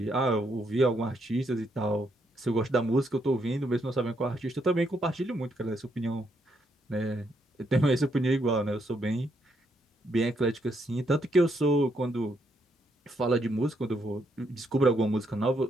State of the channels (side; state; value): both; normal; correlation 0.76